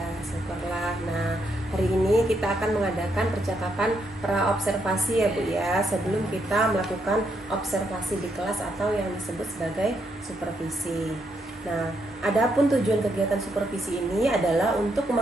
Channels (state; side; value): normal; both; correlation 0.78